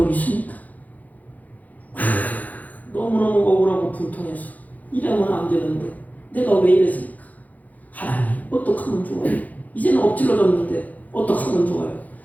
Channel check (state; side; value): late; right; 0.078 ms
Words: 있습니까? 너무너무 억울하고 분통해서 이러면 안 되는데 내가 왜 이랬을까? 하나님, 어떡하면 좋아요? 이제는 엎질러졌는데 어떡하면 좋아요?